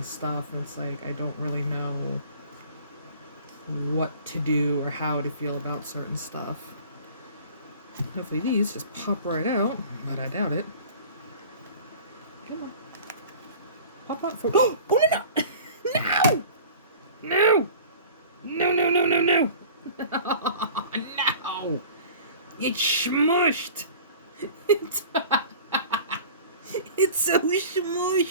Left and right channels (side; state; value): both; inverted; correlation -0.43